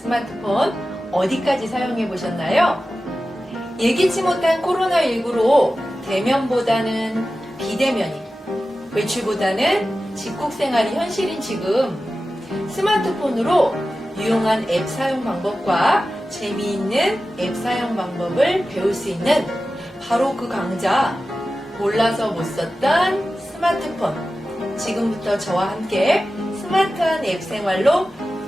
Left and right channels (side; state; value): both; normal; correlation 0.94